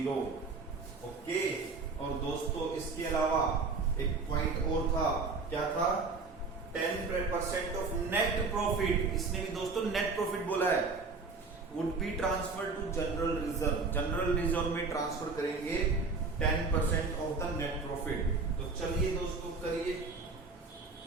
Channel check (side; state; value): left; quieter; 4.1 dB